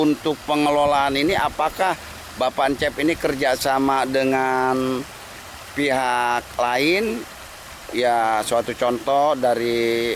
pengelolaan ini apakah Bapak Encep ini kerjasama dengan pihak lain? Ya, suatu contoh dari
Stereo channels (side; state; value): both; identical; correlation 1.00